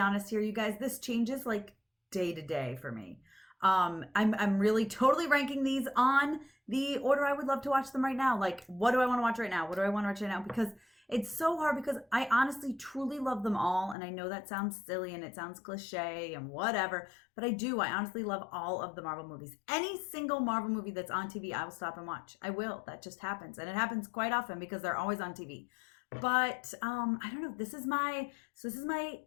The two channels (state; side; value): drops out; right; at 14.0 s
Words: here, you guys, this changes like day to day for me. I'm really totally ranking these on the order I would love to watch them right now. Like, what do I want to watch right now? What do I want to watch right now? Because it's so hard because I honestly truly love them all. And I know that sounds silly and it sounds cliche and whatever, but I do. I honestly love all of the Marvel movies. Any single Marvel movie that's on TV, I will stop and watch. I will. That just happens. And it happens quite often because they're always on TV. But I don't know. This is my